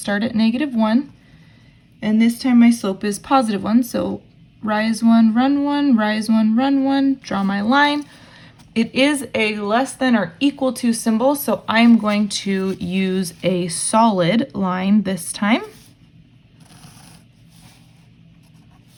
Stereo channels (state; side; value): identical; both; correlation 1.00